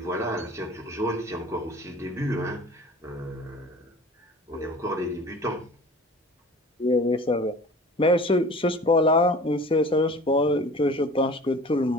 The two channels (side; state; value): both; normal; correlation 0.43